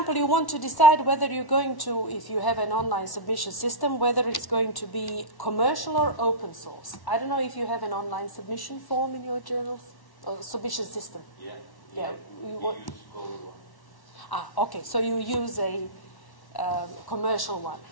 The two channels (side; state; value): right; late; 1.1 ms